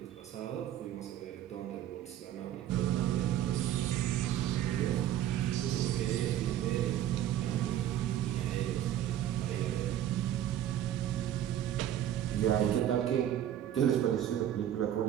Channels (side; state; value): left; quieter; 11.4 dB